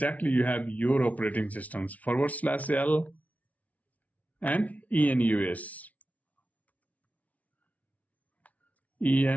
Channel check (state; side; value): late; right; 0.070 ms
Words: you have your operating systems, /L and ENUS.